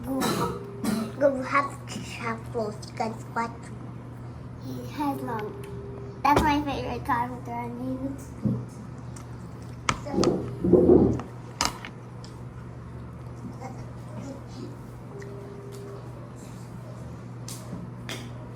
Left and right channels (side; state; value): both; identical; correlation 1.00